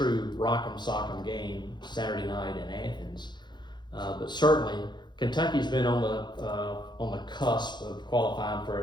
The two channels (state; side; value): late; right; 0.21 ms